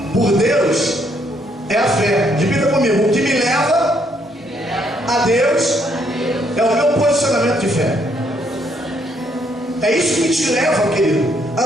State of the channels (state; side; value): normal; both; correlation 0.71